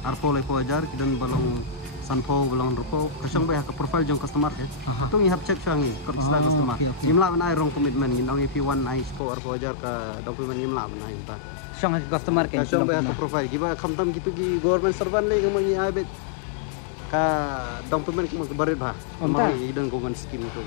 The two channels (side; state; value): right; drops out; at 9.2 s